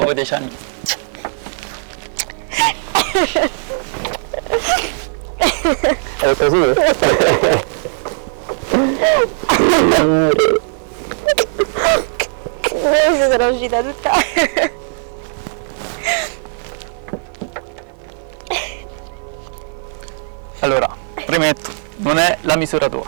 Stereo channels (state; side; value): silent; left; 55 dB below the other